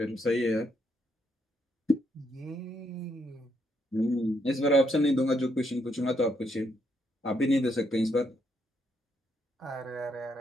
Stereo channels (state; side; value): normal; both; correlation 0.76